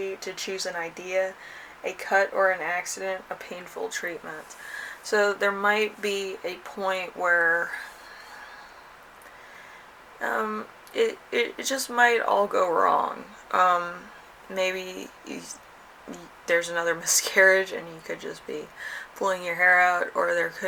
to choose an idea, a cut or an accident, a painful treatment. So there might be a point where it just might all go wrong. Um, maybe there's another miscarriage and you could just be pulling your hair out, or there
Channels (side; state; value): both; identical; correlation 1.00